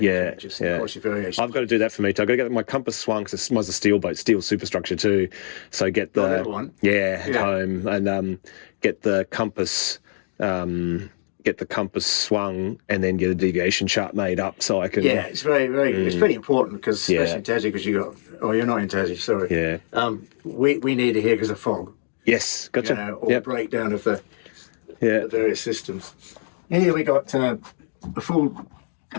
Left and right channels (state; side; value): silent; right; digital silence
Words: yeah. Of course, your variation. I've got to do that for me too. I've got to get my compass swung because mine's a steel boat, steel superstructure too. So get the that one? yeah, at Yeah. home and get the compass swung and then get a deviation chart made up so I can Yeah, it's very, very. It's pretty important because especially Yeah. in Tassie, because you got. Oh, you're not in Tassie. Sorry. Yeah. We need it here because of fog. Yes, gotcha. You know, or Yep. breakdown of the Yeah. various systems. And here we got a full